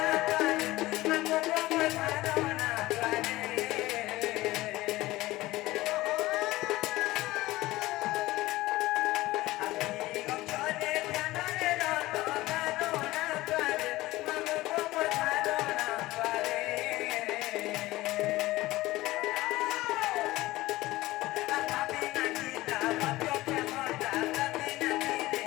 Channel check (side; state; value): right; quieter; 18.2 dB